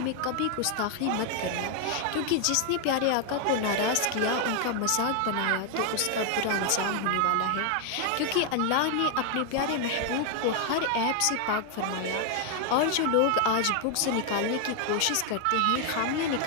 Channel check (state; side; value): different; both; correlation 0.00